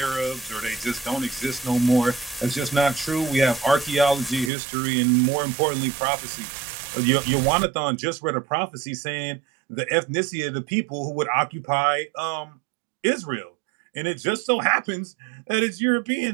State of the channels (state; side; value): drops out; left; at 4.5 s